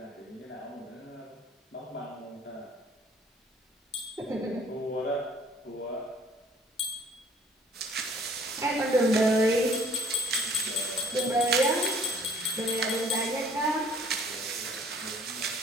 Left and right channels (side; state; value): both; normal; correlation 0.57